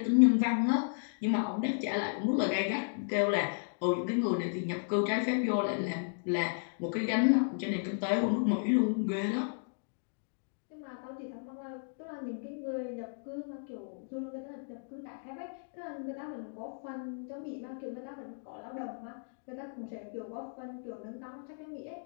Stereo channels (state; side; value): silent; right; digital silence